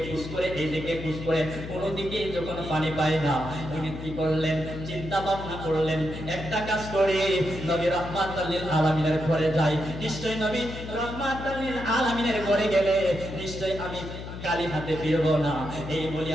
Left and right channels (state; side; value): noise; left; hum, 9 dB below the sound